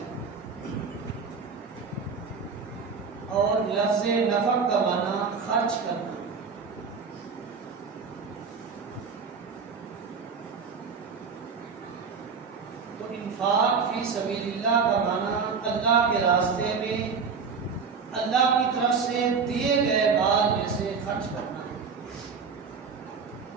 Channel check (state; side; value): quieter; left; 5.5 dB